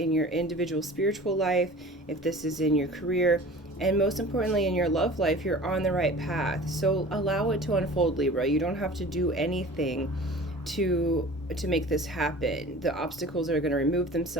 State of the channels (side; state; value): both; normal; correlation 0.41